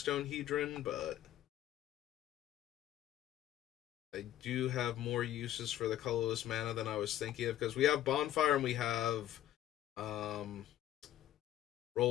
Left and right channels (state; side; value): quieter; right; 12.7 dB